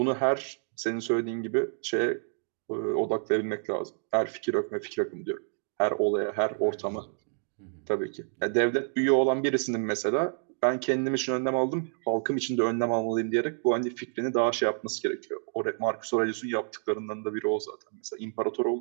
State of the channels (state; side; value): silent; left; 59 dB below the other